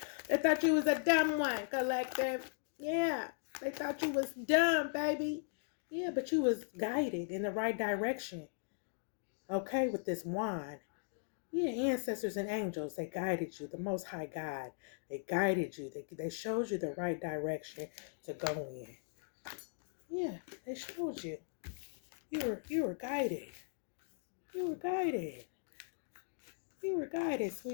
thought you was a dumb one, collective. Yeah. They thought you was dumb, baby. Yeah, but you was guided in the right direction. Okay, with this wand. Yeah, ancestors and angels, they guided you. The Most High God, they guided you. They showed you the right direction to go in. Yeah, they showed you. You were guided. You were guided. You were guided,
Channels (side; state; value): right; silent; digital silence